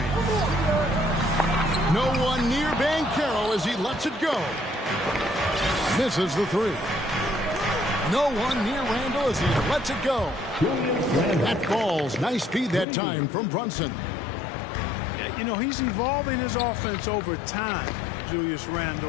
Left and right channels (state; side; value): drops out; right; at 12.9 s